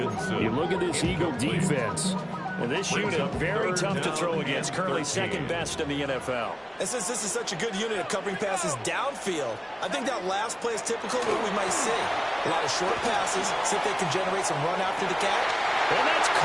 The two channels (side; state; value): both; identical; correlation 1.00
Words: You look at this Eagle defense. And this unit, very tough to throw against. Currently second best in the NFL. And since this is such a good unit of covering passes downfield, I think that last play is typical of what we might see. A lot of short passes, see if they can generate some run after the catch. And that's